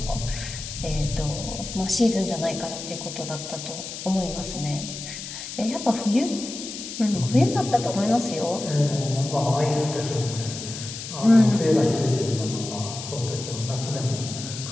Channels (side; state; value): left; noise; hiss, 9 dB below the sound